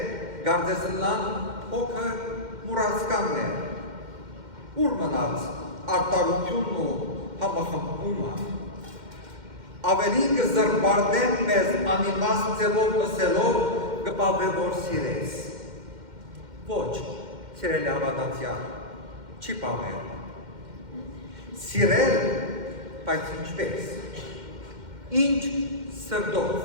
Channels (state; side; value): late; left; 2.1 ms